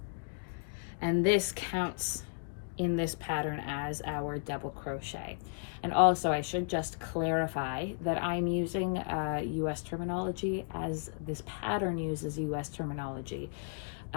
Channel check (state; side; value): silent; right; digital silence